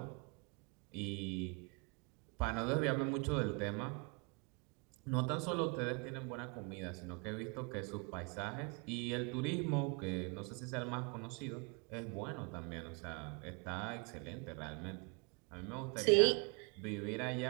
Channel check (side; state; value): left; quieter; 32.9 dB